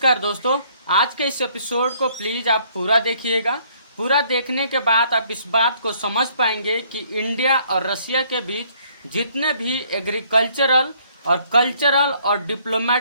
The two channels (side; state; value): both; inverted; correlation -0.63